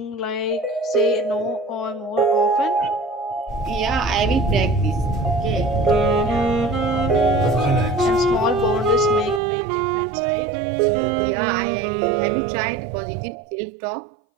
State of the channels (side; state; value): left; drops out; at 9.4 s